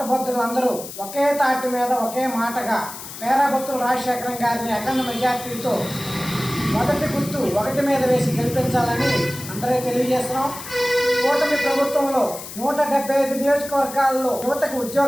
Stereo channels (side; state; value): left; noise; hiss, 12 dB below the sound